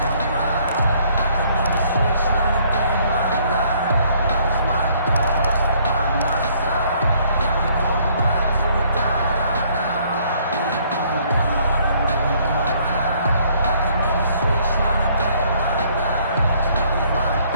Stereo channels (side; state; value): both; inverted; correlation -0.63